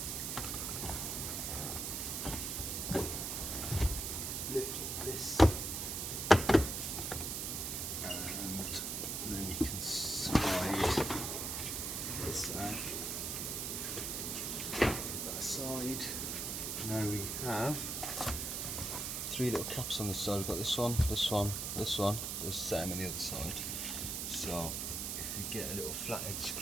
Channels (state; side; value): noise; right; hiss, 2 dB below the sound